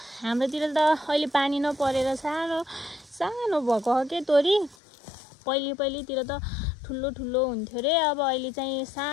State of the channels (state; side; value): drops out; right; at 4.8 s